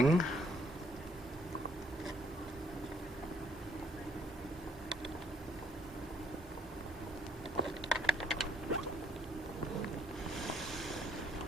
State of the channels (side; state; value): both; normal; correlation 0.66